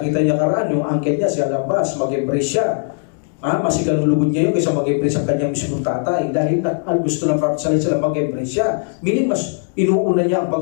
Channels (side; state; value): right; silent; digital silence